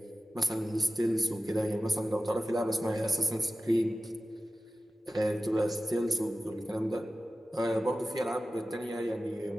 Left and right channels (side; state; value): both; normal; correlation 0.94